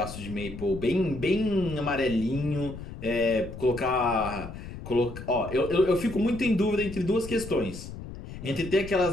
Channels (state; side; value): noise; left; rumble, 11 dB below the sound